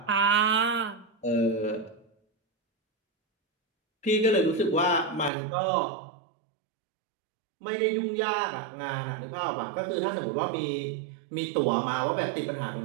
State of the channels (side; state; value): left; drops out; at 5.3 s